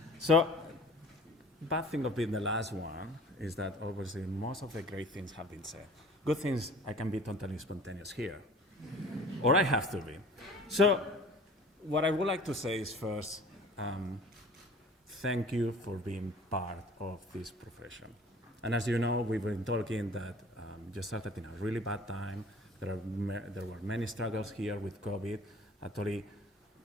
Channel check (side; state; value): both; normal; correlation 0.46